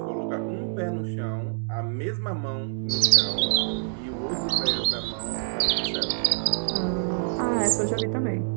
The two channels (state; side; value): silent; left; digital silence